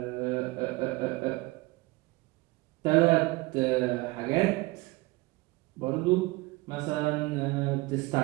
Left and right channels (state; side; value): quieter; left; 22.4 dB